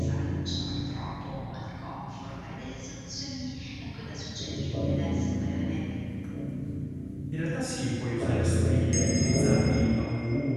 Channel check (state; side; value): identical; both; correlation 1.00